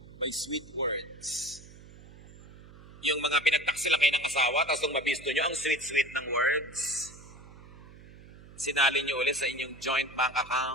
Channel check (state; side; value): noise; right; hum, 19 dB below the sound